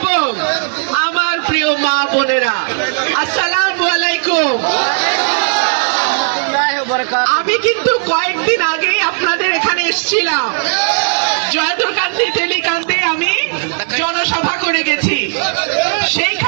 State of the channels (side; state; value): left; silent; 62 dB below the other